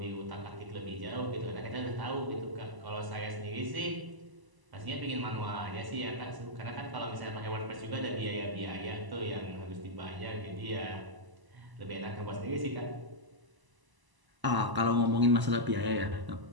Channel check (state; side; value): late; left; 1.0 ms